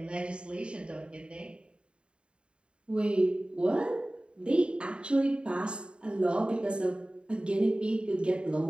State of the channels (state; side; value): late; left; 0.054 ms